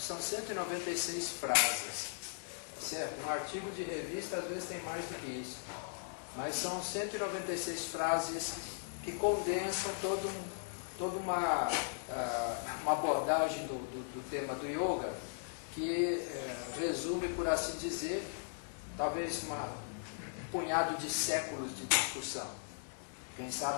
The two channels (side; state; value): right; silent; digital silence